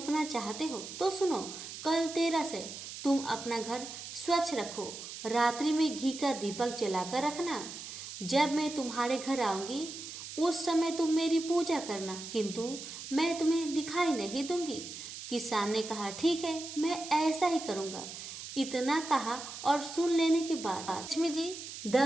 चाहते हो तो सुनो, कल 13 से तुम अपना घर स्वच्छ रखो। रात्रि में घी का दीपक जलाकर रखना। जब मैं तुम्हारे घर आऊंगी उस समय तुम मेरी पूजा करना, किंतु मैं तुम्हें दिखाई नहीं दूंगी। किसान ने कहा, ठीक है, मैं ऐसा ही करूंगा। इतना कहा और सुन लेने के बाद लक्ष्मी जी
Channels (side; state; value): right; noise; hiss, 10 dB below the sound